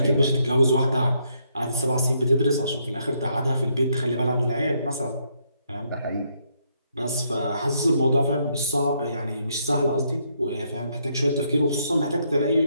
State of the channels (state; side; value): inverted; both; correlation -0.74